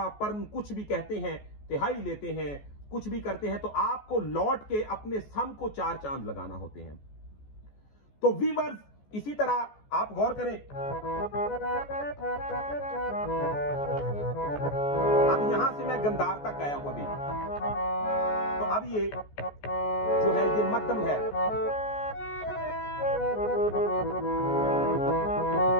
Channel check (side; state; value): right; late; 14 ms